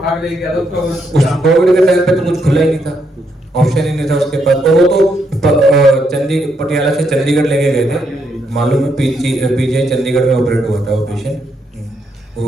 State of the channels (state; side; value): normal; both; correlation 0.77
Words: ले गया था उस उसका। कोविड के टाइम पे तो कुछ खुला ही नहीं था, ऑप्शन ही नहीं था उसके पास। तो वो तो पटियाला से चंडीगढ़ लेके गए थे, मालूम है पीजीआई चंडीगढ़ में ऑपरेट हुआ था वो पेशेंट,